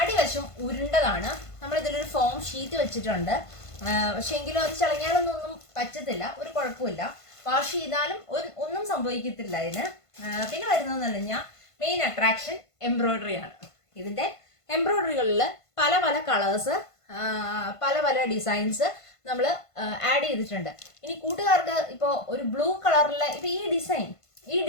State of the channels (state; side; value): late; right; 1.5 ms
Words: ഉരുണ്ടതാണ്. നമ്മൾ ഇതിലൊരു ഫോം ഷീറ്റ് വെച്ചിട്ടുണ്ട്. പക്ഷെ എങ്കിലും അത് ചളങ്ങിയാലൊന്നും പറ്റത്തില്ല, ഒരു കുഴപ്പമില്ല. വാഷ് ചെയ്താലും ഒന്നും സംഭവിക്കത്തില്ല ഇതിന്. പിന്നെ വരുന്നതെന്ന് പറഞ്ഞു കഴിഞ്ഞാൽ മെയിൻ അട്രാക്ഷൻ എംബ്രോയിഡറി ആണ്. ഇതിന്റെ എംബ്രോയിഡറികളിൽ പല പല കളേഴ്സ്, പല പല ഡിസൈൻസ് നമ്മൾ ആഡ് ചെയ്തിട്ടുണ്ട്. ഇനി കൂട്ടുകാർക്ക് ഇപ്പോൾ ഒരു ബ്ലൂ കളറിലെ ഇപ്പൊ ഈ